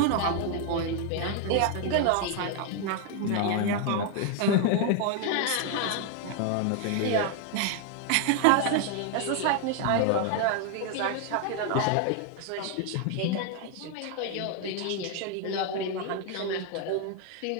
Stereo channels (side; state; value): both; different; correlation 0.00